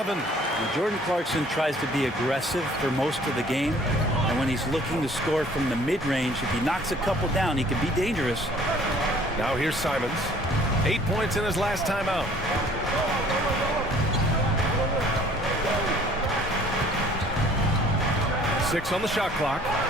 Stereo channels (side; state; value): both; normal; correlation 0.54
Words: And Jordan Clarkson tries to be aggressive for most of the game. And when he's looking to score from the mid-range, if he knocks a couple down, he can be dangerous. Now here's Simons. 8 points in his last time out. Six on the shot clock.